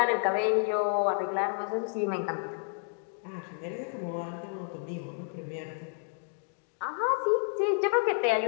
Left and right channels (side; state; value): right; silent; 57 dB below the other